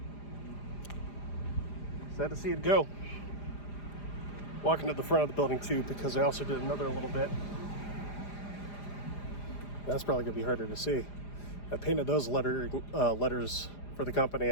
to see it go. Walking to the front of the building too, because I also did another little bit. That's probably gonna be harder to see. I painted those letters for the company,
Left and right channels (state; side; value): late; right; 4.9 ms